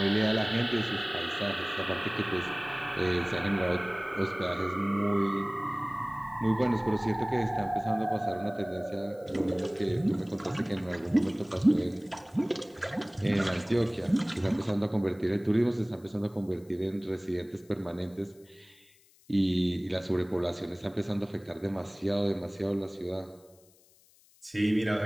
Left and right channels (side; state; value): left; noise; hiss, 29 dB below the sound